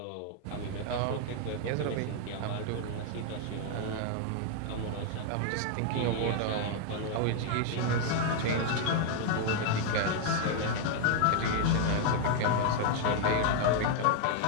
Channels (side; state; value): both; different; correlation 0.00